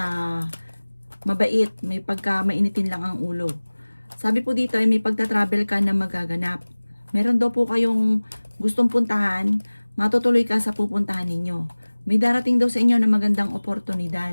mabait. May mainitin lang ang ulo. Sabi po dito ay may pagta-travel ka na magaganap. Meron daw po kayong gustong puntahan, matutuloy ka sa pupuntahan ninyo. May darating daw sa inyo na magandang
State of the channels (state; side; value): inverted; both; correlation -1.00